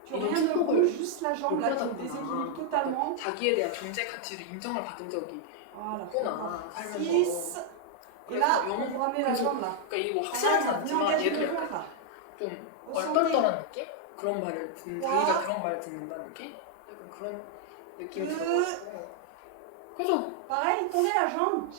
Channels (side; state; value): both; different; correlation 0.00